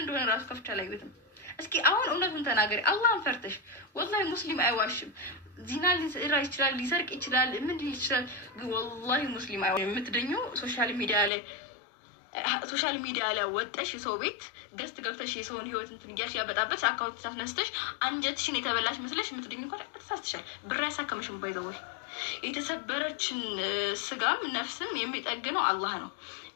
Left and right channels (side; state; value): right; drops out; at 11.3 s